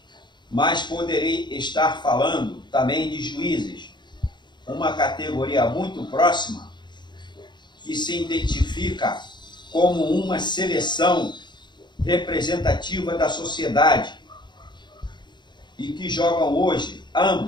mas poderei estar falando também de juízes, uma categoria muito próxima que se identifica como uma seleção representativa da sociedade e que jogam hoje,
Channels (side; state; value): right; late; 0.22 ms